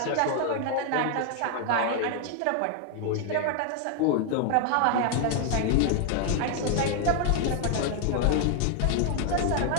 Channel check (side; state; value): both; different; correlation 0.00